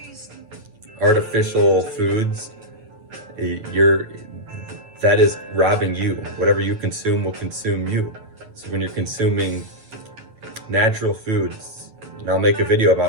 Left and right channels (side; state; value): left; late; 9.1 ms